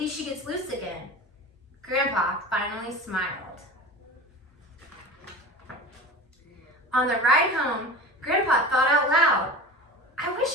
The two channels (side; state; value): both; normal; correlation 0.34